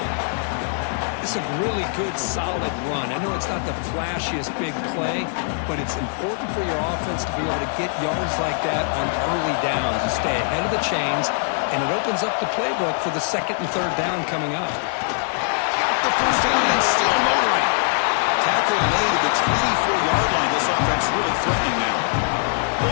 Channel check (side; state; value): right; silent; digital silence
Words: It's a really good, solid run. I know it's not the flashiest big play, but it's important for your offense to be able to get yards like that on early downs. You stay ahead of the chains, and it opens up the playbook for the 2nd and 3rd down coming up. Got the first down and still motoring. Tackle made at the 24-yard line. This offense really threatening now.